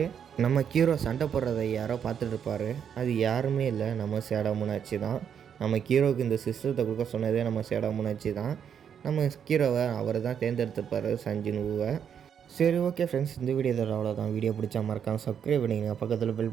நம்ம ஹீரோ சண்டை போடுறதை யாரோ பார்த்துட்டு இருப்பார். அது யாருமே இல்லை, நம்ம சேடா முனாச்சி தான். நம்ம ஹீரோவுக்கு இந்த சிஸ்டத்தை கொடுக்க சொன்னதே நம்ம சேடா முனாச்சி தான். நம்ம ஹீரோவை அவர் தான் தேர்ந்தெடுத்திருப்பார் சஞ்சுனுவை. சரி, ஓகே ஃப்ரெண்ட்ஸ், இந்த வீடியோ இதோட அவ்வளோதான். வீடியோ பிடிச்சா மறக்காமல் சப்ஸ்கிரைப் பண்ணிங்க. பக்கத்தில் பெல்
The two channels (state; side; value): quieter; left; 8.0 dB